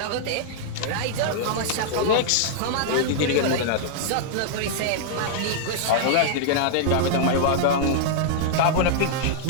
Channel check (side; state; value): both; different; correlation -0.01